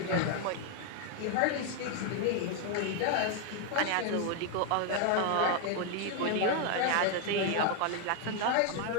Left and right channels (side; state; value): both; different; correlation 0.00